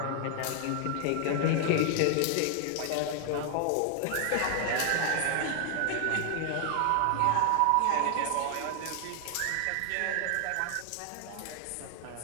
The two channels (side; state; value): both; different; correlation 0.00